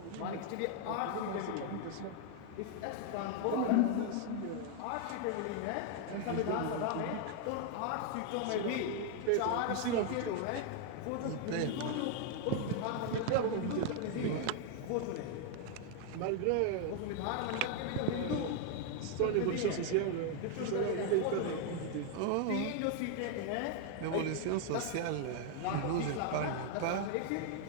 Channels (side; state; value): both; different; correlation 0.00